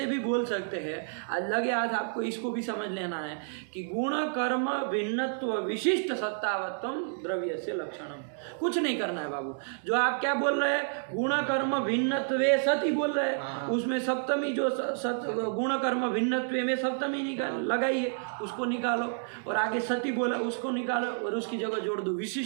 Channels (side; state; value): left; silent; digital silence